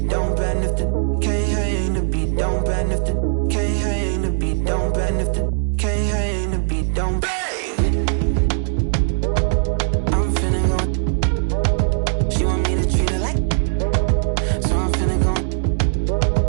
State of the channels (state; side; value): silent; left; digital silence